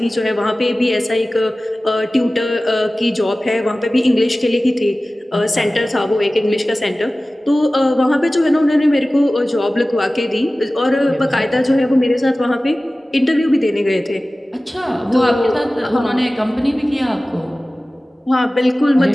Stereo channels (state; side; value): normal; both; correlation 0.97